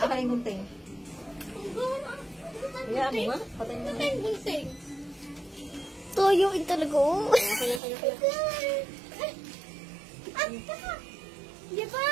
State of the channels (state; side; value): drops out; left; at 7.8 s